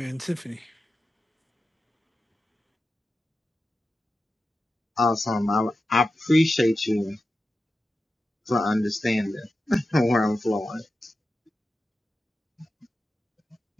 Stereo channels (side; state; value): both; normal; correlation 0.92